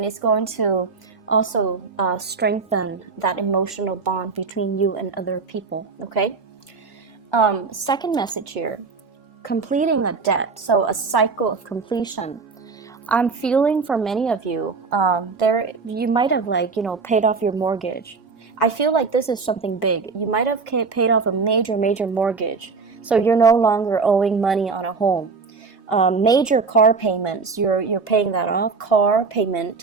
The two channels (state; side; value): quieter; left; 4.6 dB